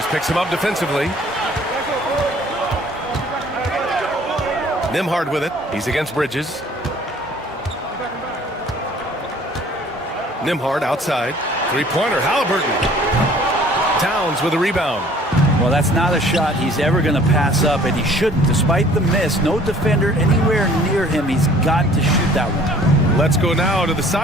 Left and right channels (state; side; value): normal; both; correlation 0.54